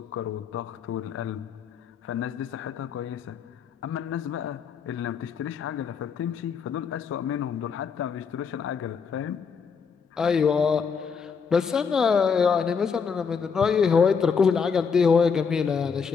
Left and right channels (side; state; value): right; quieter; 6.0 dB